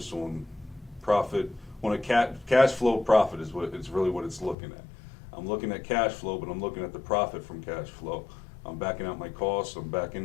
on profit. On a cash flow profit is what it's really what it's looking at. I'm looking at cash flow, but I'm looking at the profit from cash flow. I'm backing out my costs. I'm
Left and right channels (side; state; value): right; drops out; at 4.5 s